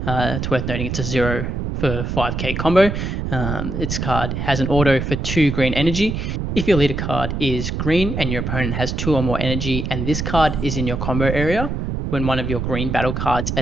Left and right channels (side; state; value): right; noise; rumble, 3 dB below the sound